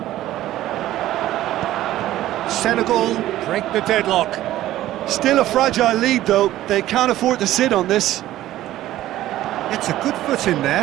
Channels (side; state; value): left; quieter; 14.3 dB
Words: Senegal break the deadlock. Still a fragile lead, though. They can't afford to sit on this. It's a good foot in